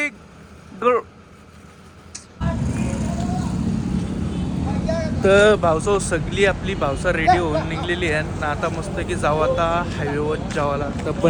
तर भाऊसाव सगळी आपली भावसा रेडी होऊन निघलेली आहे ना. आता मस्त की जाऊ आता हायवेवर जावाला. तर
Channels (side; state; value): both; identical; correlation 1.00